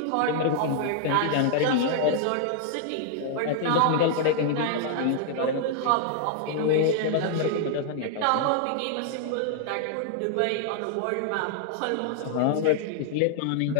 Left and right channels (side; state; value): both; different; correlation -0.01